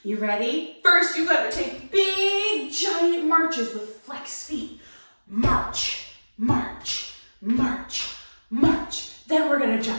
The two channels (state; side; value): inverted; both; correlation -1.00